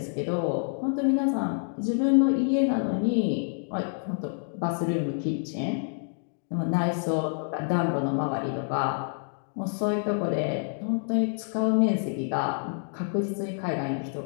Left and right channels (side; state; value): right; silent; digital silence